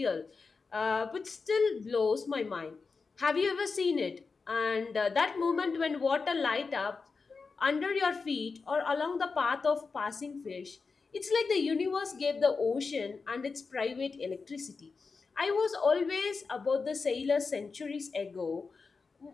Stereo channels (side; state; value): right; quieter; 4.6 dB